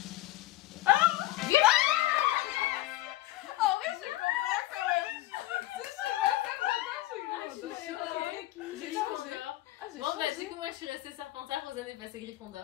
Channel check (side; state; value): right; quieter; 16.2 dB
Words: J'ai changé. Ah, j'ai Bon bah changé. du coup moi je suis restée Serpentard, Rosanne est passée